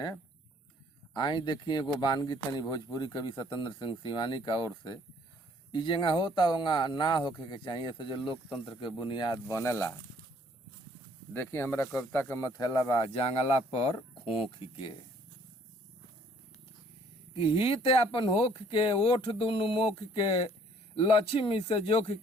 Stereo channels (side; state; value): both; normal; correlation 0.61